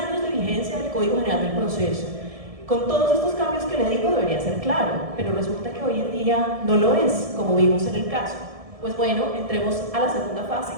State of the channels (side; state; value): left; late; 1.7 ms